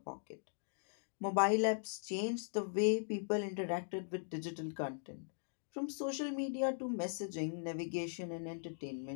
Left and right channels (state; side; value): silent; right; digital silence